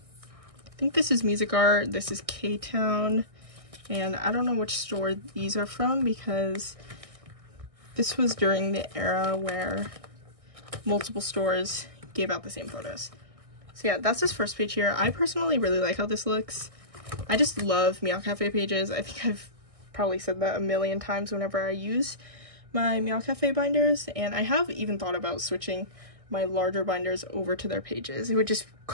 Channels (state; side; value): late; left; 1.6 ms